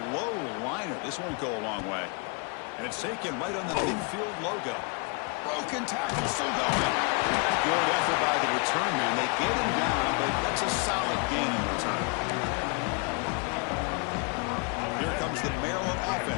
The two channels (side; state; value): right; quieter; 34.3 dB